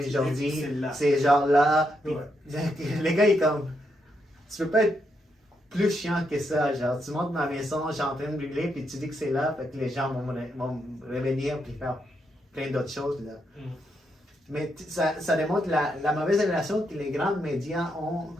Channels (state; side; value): normal; both; correlation 0.80